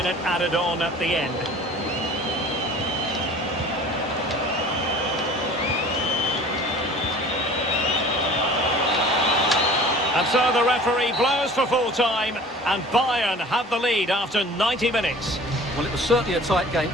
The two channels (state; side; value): normal; both; correlation 0.45